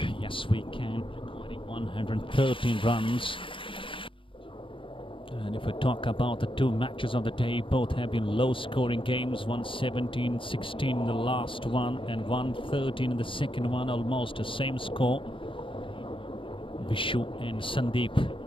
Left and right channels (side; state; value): right; late; 0.25 ms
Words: Yes We Can recording 113 runs. And if we talk about the two matches of the day, both have been low scoring games. 117-16 in the last one and 113 in the second one, almost the same score. Vishu and Sandeep,